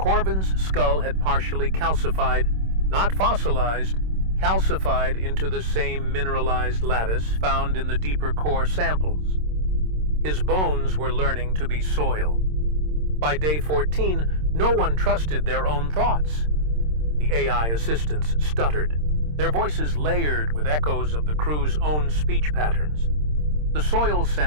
skull had partially calcified, not fossilized, calcified into the same mineralized lattice found in the deeper core samples. His bones were learning to be soil. By day 14, no one trusted their own thoughts. The AI assistants stuttered, their voices layered with echoes of the crew's own speech patterns. The soil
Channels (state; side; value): late; left; 26 ms